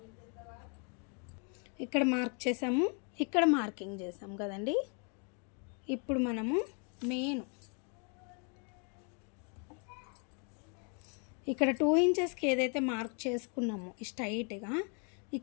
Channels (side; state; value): right; quieter; 39.1 dB